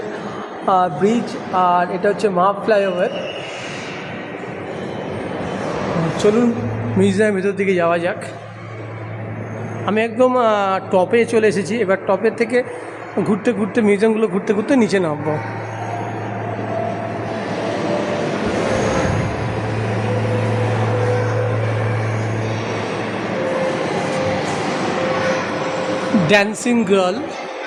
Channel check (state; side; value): identical; both; correlation 1.00